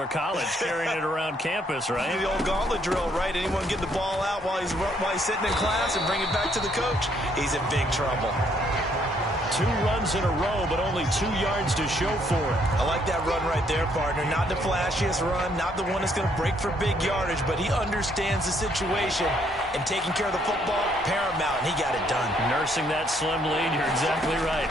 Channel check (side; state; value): both; normal; correlation 0.69